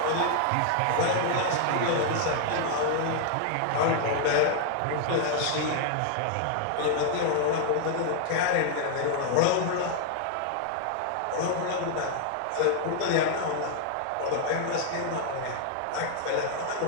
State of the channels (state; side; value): different; both; correlation 0.00